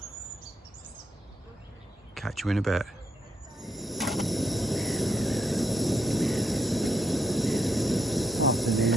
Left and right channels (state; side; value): normal; both; correlation 0.77